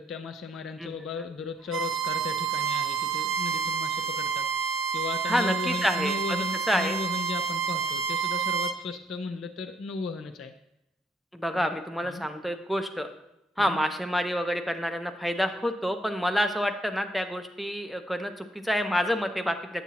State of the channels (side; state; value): both; normal; correlation 0.67